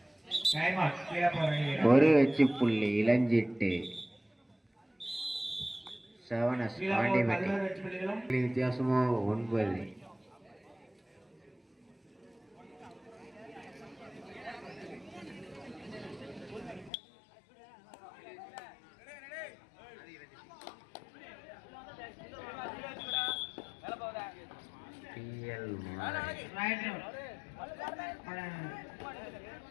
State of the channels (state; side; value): drops out; right; at 16.9 s